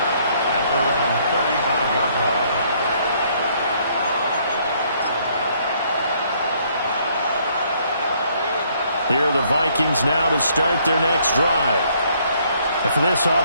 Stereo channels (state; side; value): inverted; both; correlation -0.66